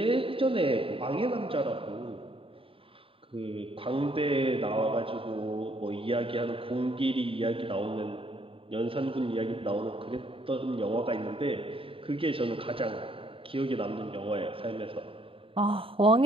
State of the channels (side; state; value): left; late; 0.26 ms